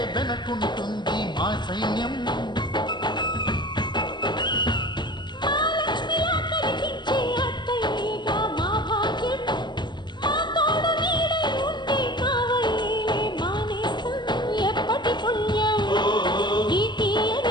వెనకుంటుంది మా సైన్యం మహాలక్ష్మిలా కనిపించే అత్తయ్యగా మా భాగ్యం మా తోడు నీడై ఉండే కావయ్యేలే మా నేస్తం ఎప్పటి పుణ్యం ఈ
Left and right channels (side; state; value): right; late; 0.22 ms